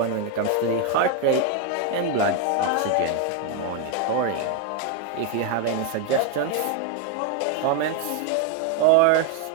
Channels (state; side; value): different; both; correlation 0.01